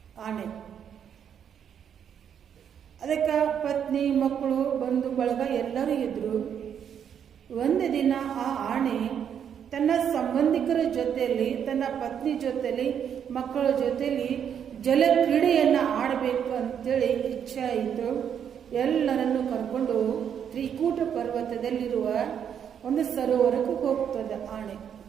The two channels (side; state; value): left; quieter; 8.4 dB